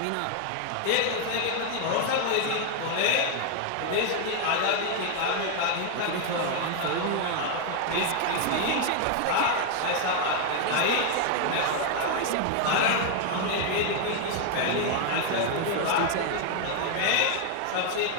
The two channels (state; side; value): different; both; correlation 0.00